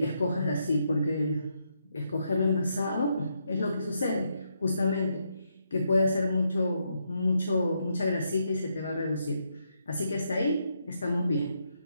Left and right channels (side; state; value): both; inverted; correlation -0.79